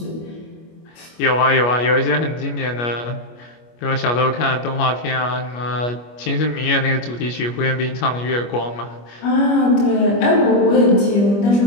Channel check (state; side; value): late; right; 25 ms